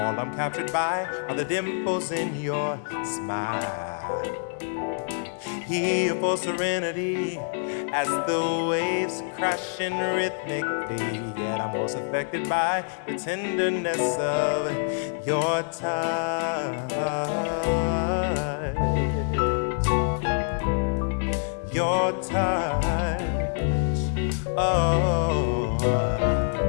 I'm captured by are the dimples in your smile. Here for serenity as the waves crashing rhythmically, yet I'm most affected by the tenderness of your touch. Your touch, oh.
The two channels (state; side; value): silent; right; digital silence